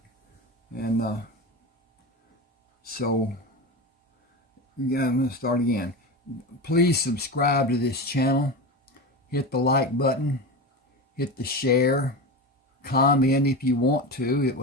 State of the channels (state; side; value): normal; both; correlation 0.24